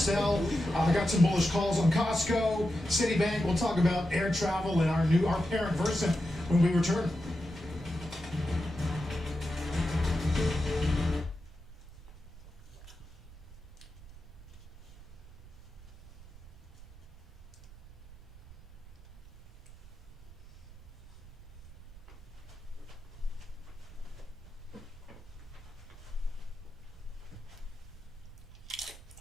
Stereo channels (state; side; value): noise; right; rumble, 18 dB below the sound